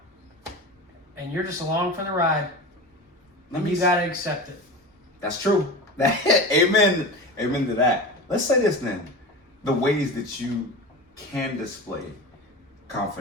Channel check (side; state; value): both; normal; correlation 0.30